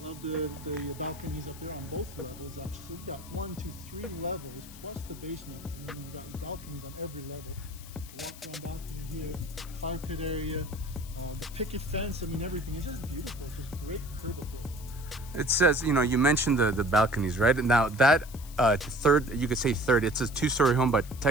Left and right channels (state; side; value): noise; left; hiss, 18 dB below the sound